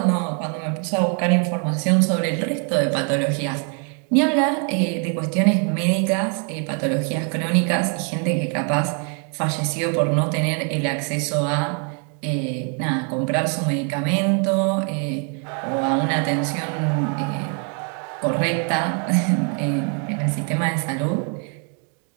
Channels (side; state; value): left; quieter; 40.0 dB